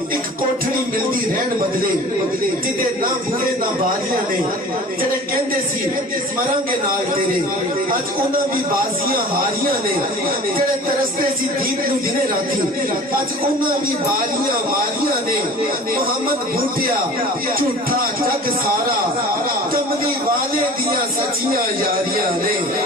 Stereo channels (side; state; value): both; normal; correlation 0.42